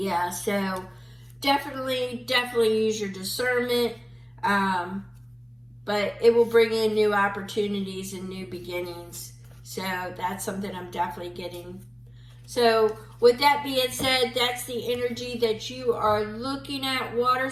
definitely use your discernment, but it will bring in new opportunities and new beginnings. So that's something I'm definitely getting. So with that being said, that's the energy that you are looking at, water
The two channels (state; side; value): identical; both; correlation 1.00